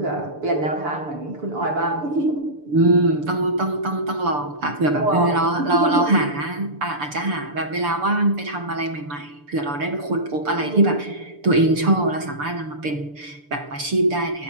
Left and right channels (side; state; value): left; late; 6.8 ms